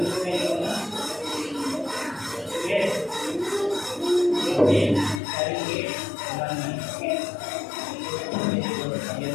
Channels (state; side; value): drops out; right; at 5.2 s